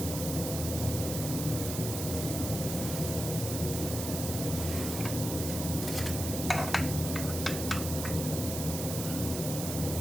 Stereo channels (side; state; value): right; noise; hiss, 5 dB below the sound